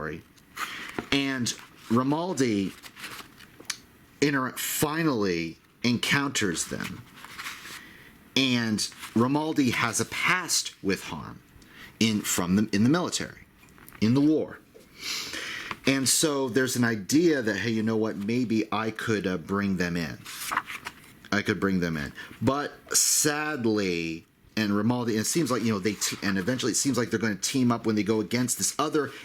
And Romaldi finally encounters them. And Romaldi has a past with Harm in the military, in the war. And so there's an idea that, hey, you know what, maybe I could bring them in. But sadly, and Romaldi, it seems like, and eventually it seems like they're going to team up when they go against this other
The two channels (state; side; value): identical; both; correlation 1.00